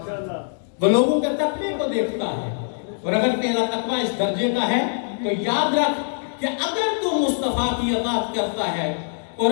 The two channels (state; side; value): silent; right; digital silence